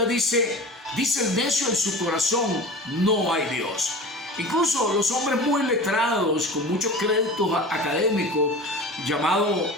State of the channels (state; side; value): normal; both; correlation 0.35